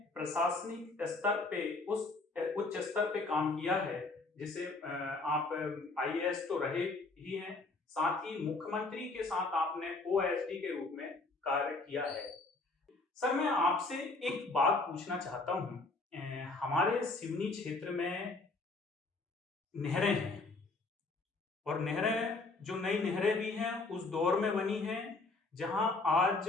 प्रशासनिक स्तर पे उस उच्च स्तर पे काम किया है जिसे आप IAS तो रहे ही हैं, साथ ही मुख्यमंत्री के साथ आपने OSD के रूप में कार्य किया है। सर, मैं आपसे एक बात पूछना चाहता हूँ। हमारे सिवनी क्षेत्र में नहरें हैं और नहरें, जो नई नहरें भी हैं उस दौर में बनी हैं जहां आज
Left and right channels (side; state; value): right; quieter; 3.5 dB